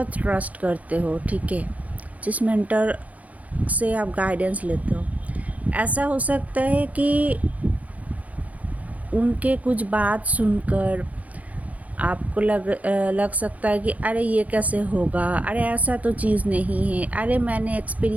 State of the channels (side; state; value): left; late; 0.071 ms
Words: ट्रस्ट करते हो, ठीक है, जिस मेंटर से आप गाइडेंस लेते हो, ऐसा हो सकता है कि उनके कुछ बात सुनकर आपको लग सकता है कि अरे ये कैसे होगा, अरे ऐसा तो चीज़ नहीं है, अरे मैंने